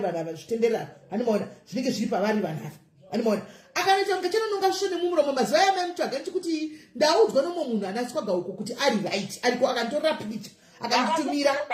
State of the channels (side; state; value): both; identical; correlation 1.00